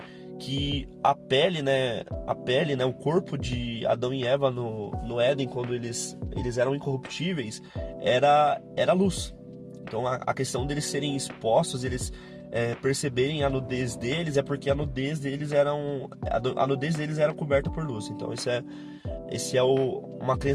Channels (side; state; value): both; identical; correlation 1.00